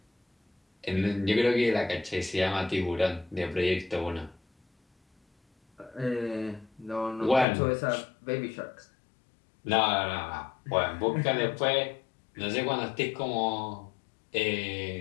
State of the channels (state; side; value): drops out; right; at 7.5 s